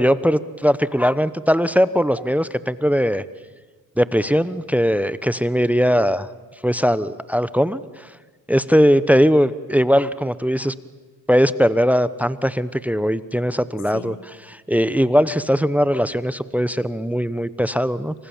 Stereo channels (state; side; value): normal; both; correlation 0.93